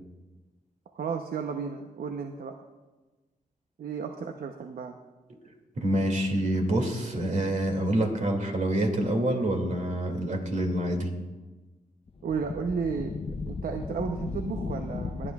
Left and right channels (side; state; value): both; normal; correlation 0.73